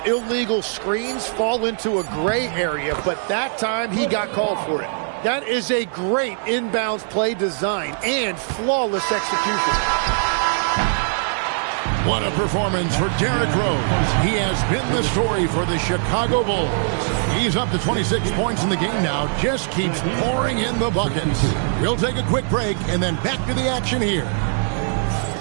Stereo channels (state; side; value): silent; left; digital silence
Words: illegal screens fall into a gray area, but that time he got called for it. That is a great inbounds play design and flawless execution. What a performance for Derrick Rose. He has been the story for the Chicago Bulls. He's up to 26 points in the game now, just keeps pouring in the buckets. We'll take a quick break and then back to the action here.